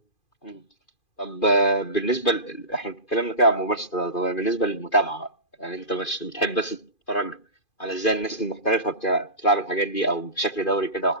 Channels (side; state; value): right; late; 2.5 ms